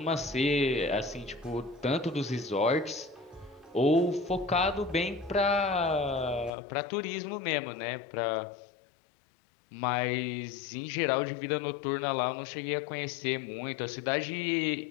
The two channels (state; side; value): drops out; right; at 6.5 s